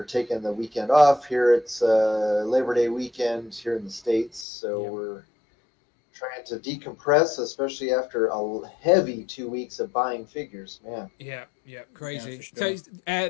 taking the weekend off here. It's Labor Day weekend here in the States, so we're trying to decompress, especially after a heavy 2 weeks of buying figures, man. Yeah, crazy. Yeah, sure. So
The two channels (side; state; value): right; drops out; at 4.5 s